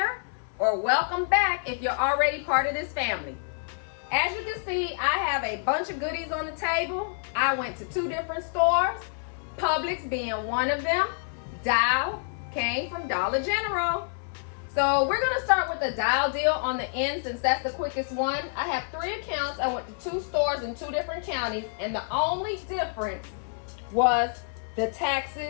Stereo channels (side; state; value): right; silent; 60 dB below the other